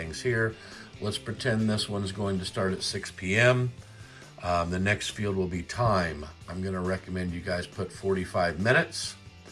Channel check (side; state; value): both; identical; correlation 1.00